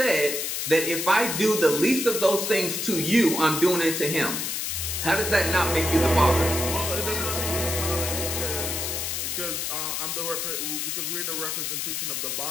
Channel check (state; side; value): noise; left; hiss, 2 dB below the sound